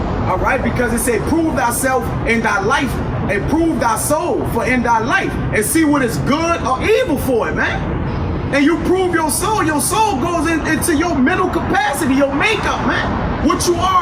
All right, because it said, prove thyself in thy life and prove thy soul for in thy life and see what is good or evil for it, man. And you prove your soul goes into your mental capacity, your makeup, man. What you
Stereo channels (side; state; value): both; identical; correlation 1.00